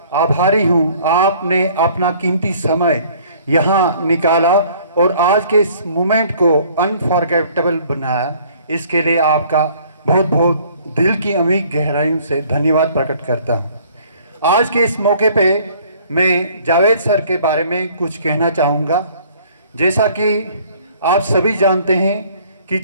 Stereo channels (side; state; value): both; inverted; correlation -0.56